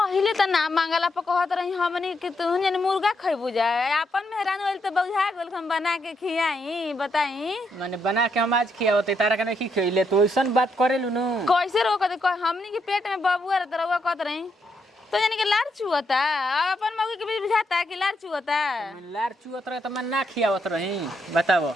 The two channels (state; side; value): normal; both; correlation 0.78